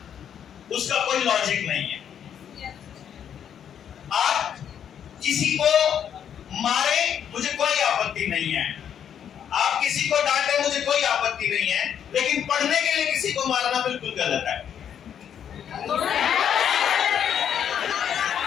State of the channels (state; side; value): quieter; right; 8.8 dB